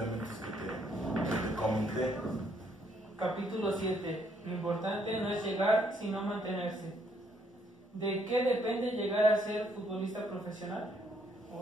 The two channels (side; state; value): both; normal; correlation 0.70